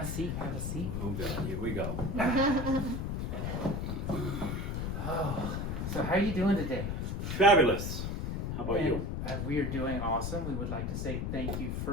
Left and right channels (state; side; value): noise; left; rumble, 2 dB below the sound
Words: a seat. Have a seat. Oh, God. Here we go. Oh, so how are you doing today? Fabulous. How about you? We are doing awesome. We would like to say thank you